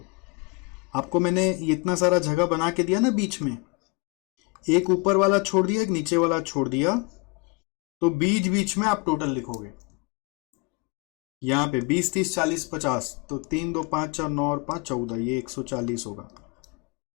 आपको मैंने इतना सारा जगह बना के दिया ना, बीच में एक ऊपर वाला छोड़ दिया, एक नीचे वाला छोड़ दिया, तो बीच बीच में आप टोटल लिखोगे। यहां पे 20, 30, 40, 50, तो 3, 2, 5, 4, 9 और 5, 14, ये 140 होगा।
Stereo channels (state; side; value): quieter; right; 28.1 dB